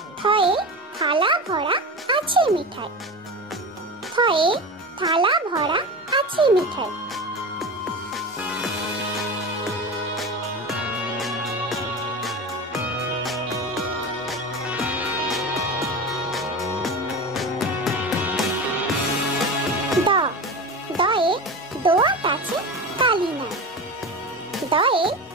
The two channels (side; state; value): both; normal; correlation 0.27